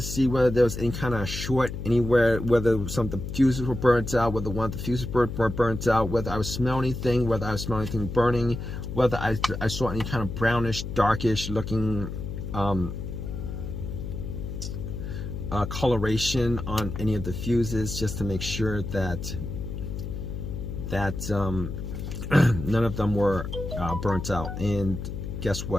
see whether there was any kind of short anywhere, whether some of the fuses were burnt out, whether one of the fuses were burnt out, whether I was smelling anything, whether I was smelling anything burning, whether I saw any kind of brownish, darkish looking coloration on any of the fuses, just to make sure that none of them were burnt out. And guess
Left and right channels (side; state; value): left; noise; hum, 6 dB below the sound